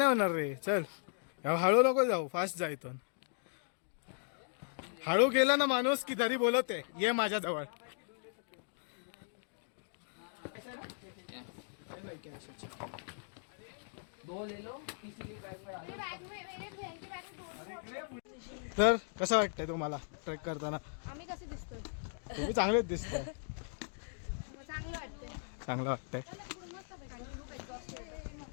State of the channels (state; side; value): silent; right; digital silence